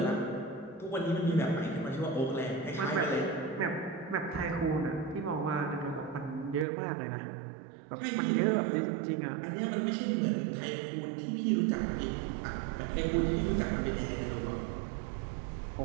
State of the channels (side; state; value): left; drops out; at 6.7 s